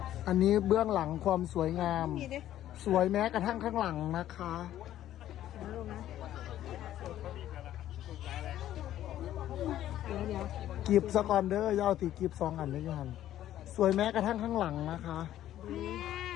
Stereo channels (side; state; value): right; quieter; 12.5 dB